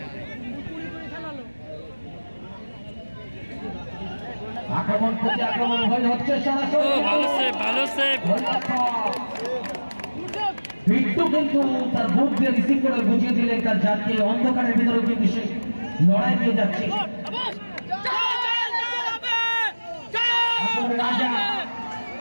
আক্রমণ প্রতি আক্রমণ হচ্ছে ও সরাসরি ভালো সেভ, ভালো সেভ। বিট্টু কিন্তু তার বুক দিয়ে রিসিভ করে বুঝিয়ে দিলেন তার জাতকে অন্ধকারের ভিতরে কিন্তু সে লড়াই দিয়ে যাচ্ছে। রাজা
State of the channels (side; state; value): both; inverted; correlation -1.00